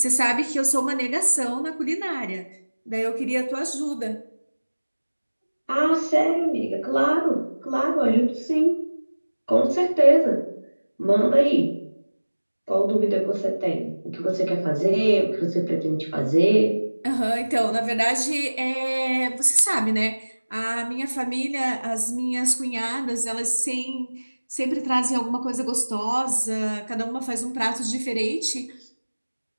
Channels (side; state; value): both; inverted; correlation -1.00